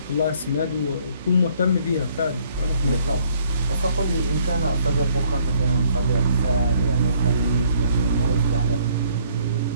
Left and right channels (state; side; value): inverted; both; correlation -0.64